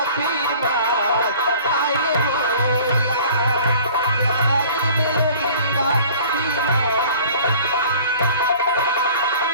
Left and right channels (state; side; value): inverted; both; correlation -0.48